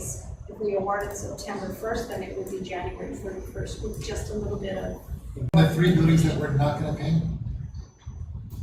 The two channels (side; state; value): both; identical; correlation 1.00